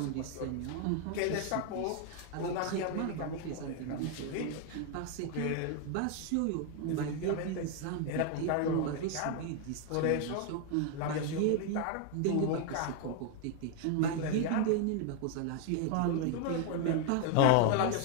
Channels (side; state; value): both; different; correlation 0.01